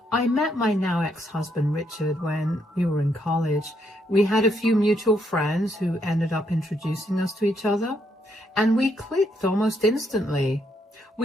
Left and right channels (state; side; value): normal; both; correlation 0.75